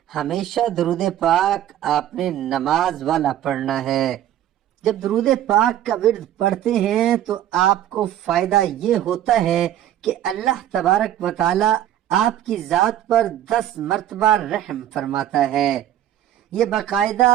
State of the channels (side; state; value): left; quieter; 11.8 dB